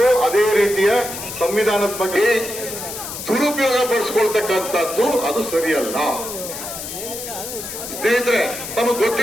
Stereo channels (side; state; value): left; noise; hiss, 8 dB below the sound